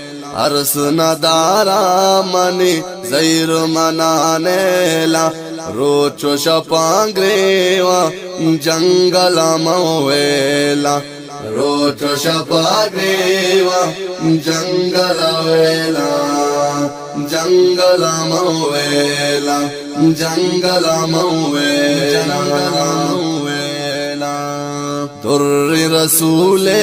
Ours नदारा money जैर मनानेला रोचो शपांग्रेवा जंगल मवेला। रोचो शपांग्रेवा जंगल वेला जंगल मवेला जंगल मवेला। दुर्रि रसूले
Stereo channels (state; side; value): identical; both; correlation 1.00